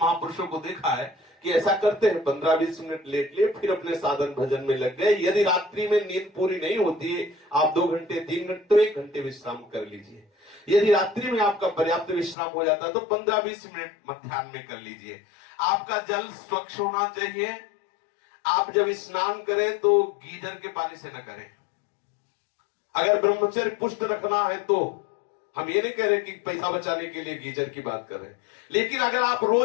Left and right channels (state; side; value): drops out; right; at 12.4 s